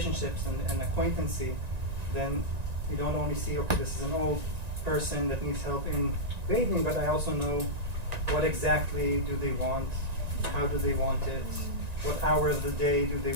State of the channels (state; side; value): late; left; 1.9 ms